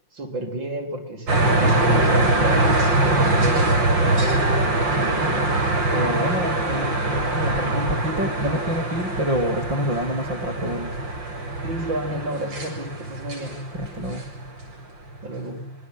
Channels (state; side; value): late; left; 5.6 ms